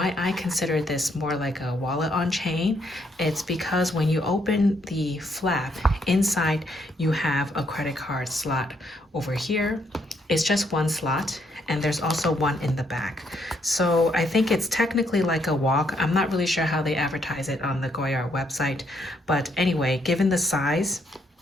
I consider this more like a wallet on chain. It's because when you open the flap, inside you have a credit card slot over here. It's just one slot, and there's also one in the back. So I think it's technically like a WOC. I'm not really sure how they advertise it on the Goyard website, but anyway, given the size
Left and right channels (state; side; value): normal; both; correlation 0.73